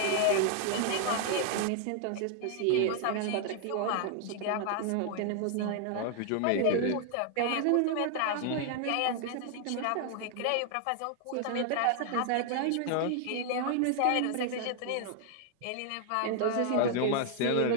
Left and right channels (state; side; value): different; both; correlation 0.00